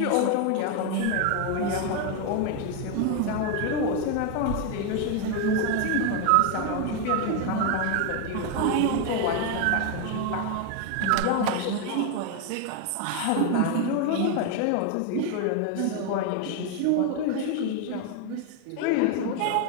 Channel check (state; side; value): different; both; correlation 0.01